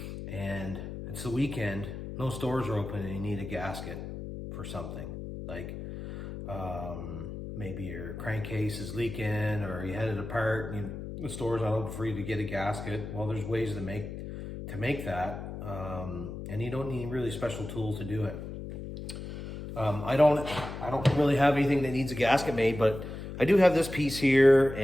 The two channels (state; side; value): noise; left; hum, 8 dB below the sound